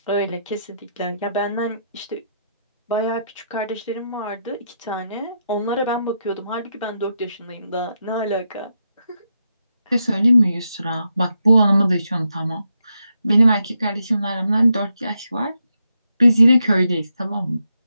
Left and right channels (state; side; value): inverted; both; correlation -0.83